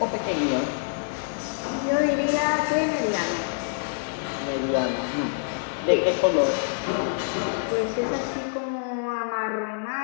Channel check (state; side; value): silent; right; digital silence